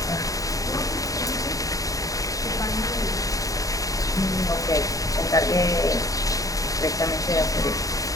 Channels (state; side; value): late; right; 0.16 ms